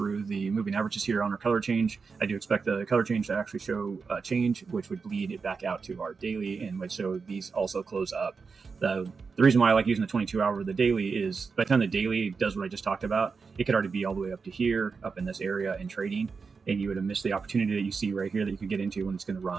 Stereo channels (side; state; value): left; quieter; 5.0 dB